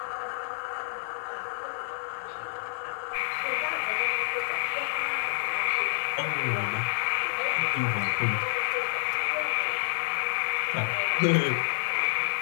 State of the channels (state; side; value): silent; right; 59 dB below the other